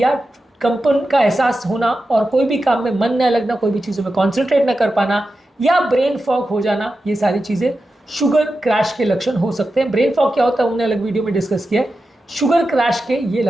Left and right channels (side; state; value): both; normal; correlation 0.91